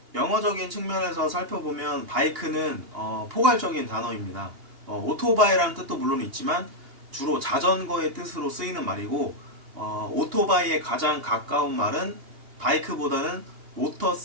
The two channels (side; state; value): left; late; 2.8 ms